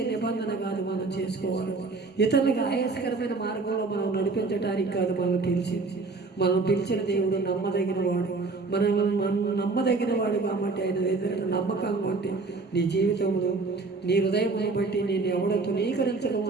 నిబంధన కాదు మనం చేసుకోవాలి. ఇతరులకు ఆయాసకరమైన మార్గంలో మనం నడిపించడానికి కాదు మనం పిలిచిన దేవుడు నమ్మదగిన వాడు. మనం నమ్మదగిన వాడు కాబట్టి ఆయన ఎదురు నమ్మకంగా ఉంటే నీ జీవితంలో నీ హృదయం బట్టి నేను ఎవడో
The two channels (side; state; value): left; quieter; 3.8 dB